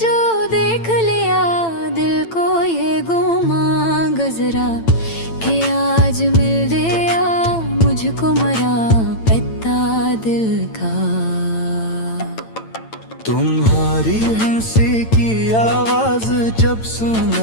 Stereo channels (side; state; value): right; late; 9.0 ms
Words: देख लिया दिल को ये गुमा गुजरा, कि आज मिल गया मुझको मरा पता दिल का। तुम्हारी हंसी की आवाज जब